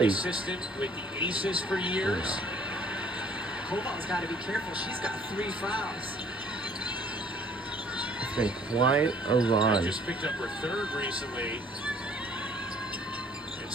assistant with the Aces for years. Koval's got to be careful. She's got 3 fouls. It's been quite a run. Just picked up her 3rd recently. And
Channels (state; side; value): normal; both; correlation 0.57